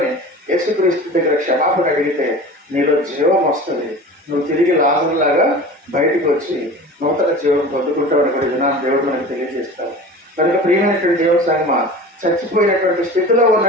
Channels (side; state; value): both; normal; correlation 0.37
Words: యేసుక్రీస్తు దగ్గర క్షమాపణ అడిగితే నీలో జీవం వస్తుంది. నువ్వు తిరిగి లాజరులాగా బయటకు వచ్చి నూతన జీవం పొందుకుంటావని కూడా వినాన్ని దేవుడు మనకు తెలియజేస్తాడు. కనుక ప్రియమైనటువంటి దేవుని సంగమా, చచ్చిపోయినటువంటి స్థితిలో